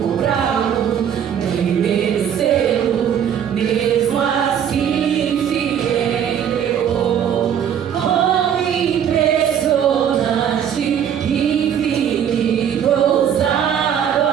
nem merecê-lo, mesmo assim se entregou. Oh, impressionante, infinito, ousado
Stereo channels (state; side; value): quieter; left; 8.8 dB